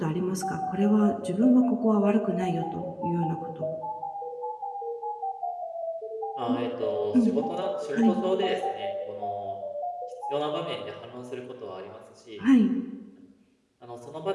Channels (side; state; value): both; identical; correlation 1.00